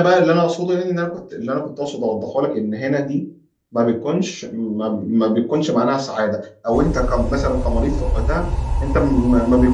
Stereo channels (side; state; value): both; identical; correlation 1.00